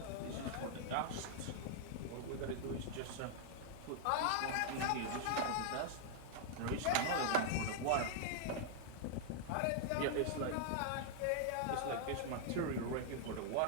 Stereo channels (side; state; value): both; different; correlation 0.00